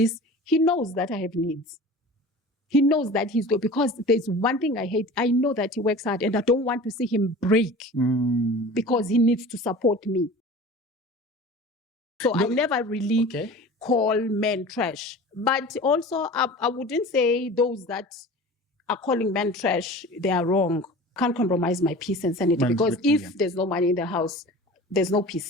He knows that I have needs. He knows that he's good, because there's one thing I hate. I know that he works hard and I don't want to see him break because he needs to support me. So I never really call men trash. But also, I wouldn't say those that are calling men trash, they are wrong. Can't compromise my peace and sanity, because if there's no money in the house, there's no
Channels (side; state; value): both; normal; correlation 0.38